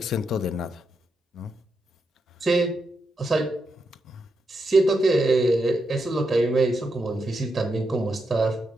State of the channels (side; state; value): both; normal; correlation 0.84